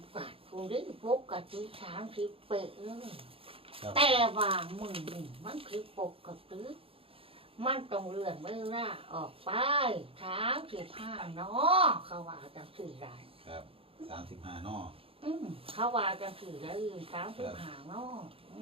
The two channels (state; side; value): late; left; 0.27 ms